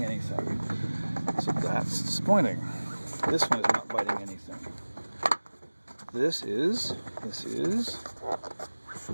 anything, so that's disappointing. This one is not biting anything. This is.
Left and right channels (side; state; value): both; inverted; correlation -1.00